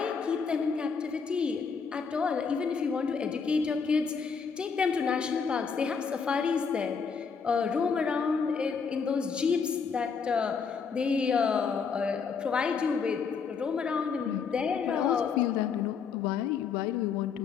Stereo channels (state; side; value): quieter; right; 5.8 dB